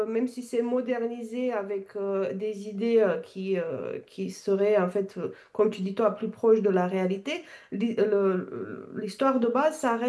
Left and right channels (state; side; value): identical; both; correlation 1.00